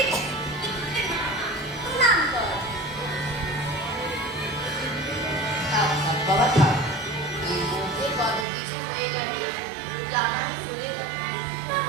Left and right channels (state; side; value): drops out; left; at 8.5 s